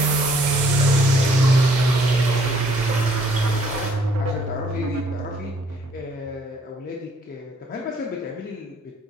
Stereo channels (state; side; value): normal; both; correlation 0.64